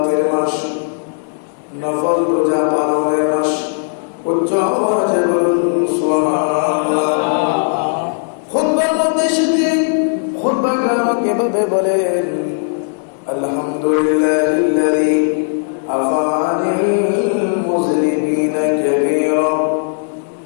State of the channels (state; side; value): silent; right; 64 dB below the other